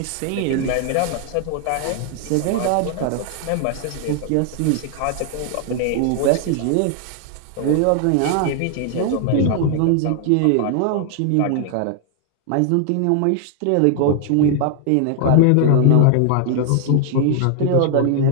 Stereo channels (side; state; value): both; different; correlation 0.00